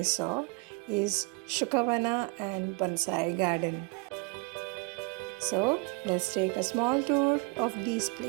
is Shukavana and Bonsai Garden. So let's take a small tour of these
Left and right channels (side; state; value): left; quieter; 31.2 dB